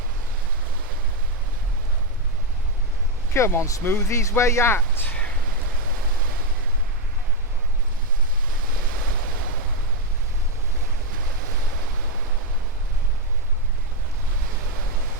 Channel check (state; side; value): normal; both; correlation 0.05